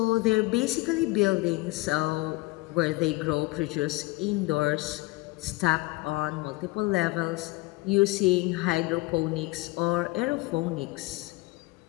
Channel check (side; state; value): right; quieter; 22.4 dB